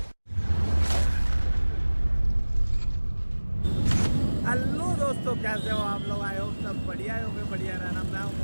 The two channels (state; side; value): inverted; both; correlation -1.00